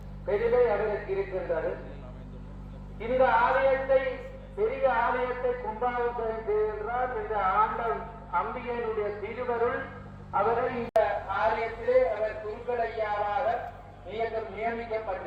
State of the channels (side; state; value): both; identical; correlation 1.00